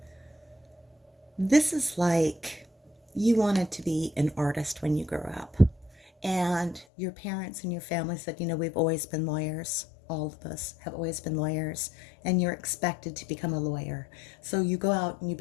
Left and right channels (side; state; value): right; drops out; at 6.9 s